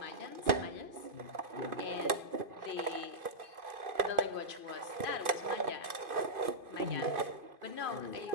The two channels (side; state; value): left; late; 2.5 ms